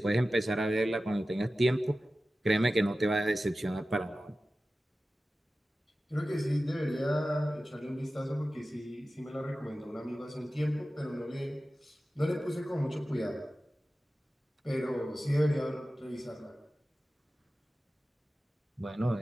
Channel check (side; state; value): both; normal; correlation 0.95